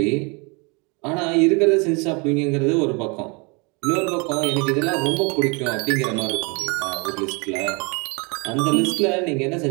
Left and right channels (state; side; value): quieter; left; 30.5 dB